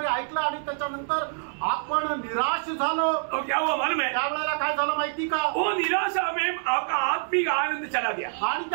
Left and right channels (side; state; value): left; silent; 61 dB below the other